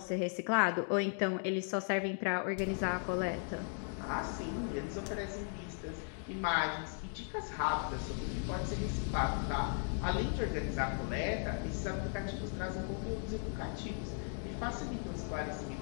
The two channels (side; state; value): right; silent; 53 dB below the other